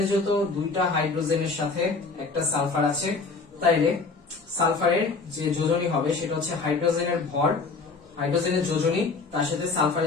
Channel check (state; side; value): quieter; right; 4.2 dB